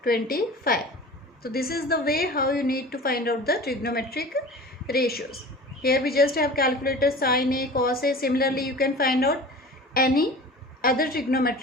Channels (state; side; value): normal; both; correlation 0.38